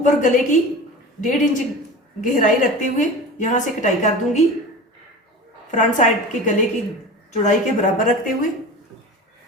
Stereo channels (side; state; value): both; normal; correlation 0.33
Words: गले की 1.5 इंच गहराई रखते हुए यहां से कटाई कर दूंगी, फ्रंट साइड के गले की चौड़ाई के बराबर रखते हुए।